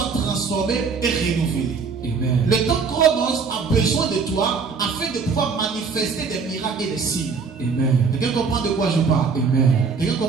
transformé et renouvelé. Amen. Le temps chronos a besoin de toi afin de pouvoir manifester des miracles et des signes. Amen. Quelqu'un comprend de quoi je parle? Amen. Quelqu'un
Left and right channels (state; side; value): quieter; left; 5.2 dB